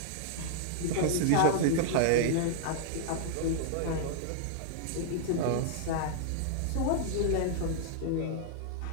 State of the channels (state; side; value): different; both; correlation -0.01